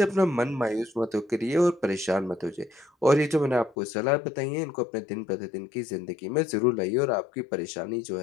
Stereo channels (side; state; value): right; drops out; at 3.8 s